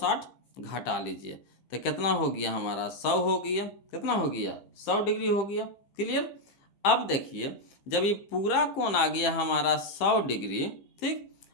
घटा लीजिए, तो कितना हो गया हमारा 100 हो गया। कितना हो गया 100 डिग्री हो गया। क्लियर। अब देखिए जब ये पूरा कोण आ गया हमारा 100 डिग्री, ठीक,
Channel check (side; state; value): right; late; 15 ms